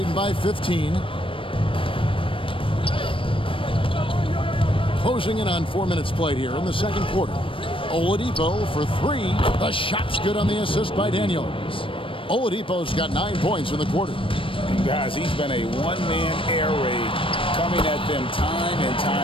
by 15. Closing in on 4 minutes played here in the second quarter. Oladipo for three. The shot's good on the assist by Daniels. Oladipo's got 9 points in the quarter. And guys, he's been a one-man air raid coming at them time and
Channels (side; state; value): right; late; 0.25 ms